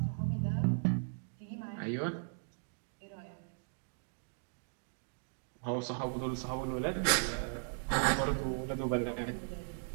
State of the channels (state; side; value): silent; left; digital silence